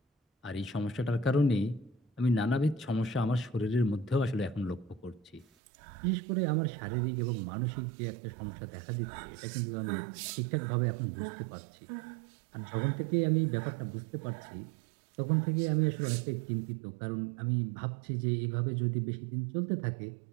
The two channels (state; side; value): drops out; left; at 5.5 s